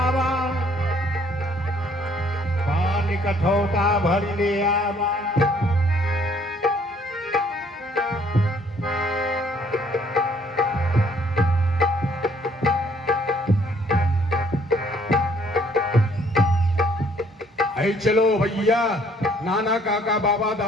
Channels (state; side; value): normal; both; correlation 0.63